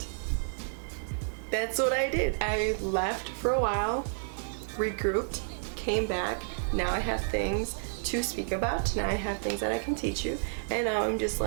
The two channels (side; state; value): left; silent; digital silence